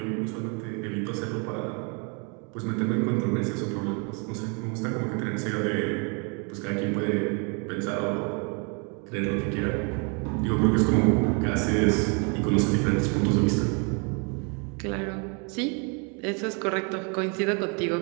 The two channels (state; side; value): quieter; left; 35.1 dB